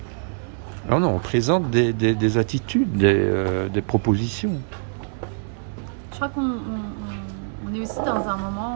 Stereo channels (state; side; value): silent; left; 63 dB below the other